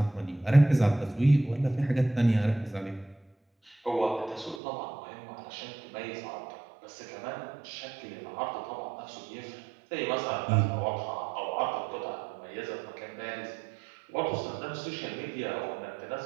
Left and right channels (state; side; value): drops out; left; at 4.6 s